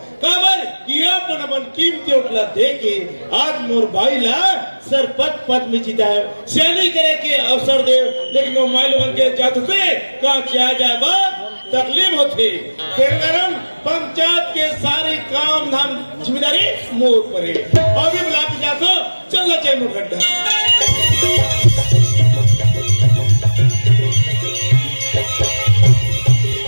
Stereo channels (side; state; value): both; inverted; correlation -1.00